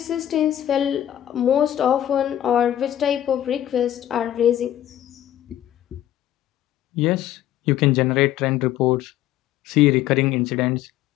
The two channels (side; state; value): right; quieter; 12.0 dB